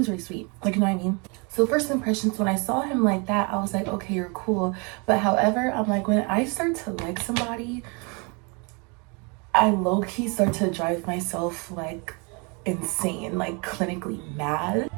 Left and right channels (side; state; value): left; quieter; 31.6 dB